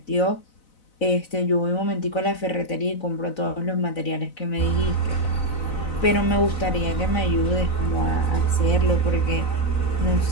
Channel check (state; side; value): late; right; 4.0 ms